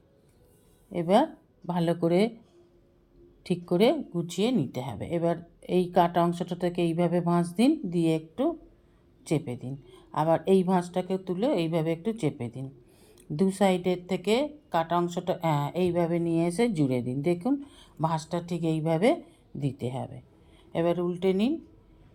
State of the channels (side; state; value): both; identical; correlation 1.00